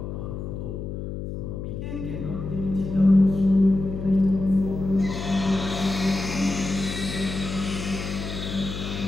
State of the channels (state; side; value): noise; left; hum, 6 dB below the sound